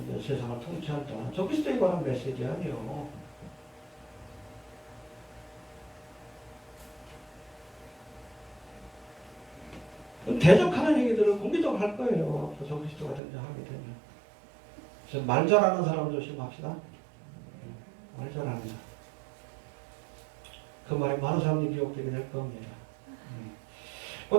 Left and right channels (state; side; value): drops out; left; at 13.2 s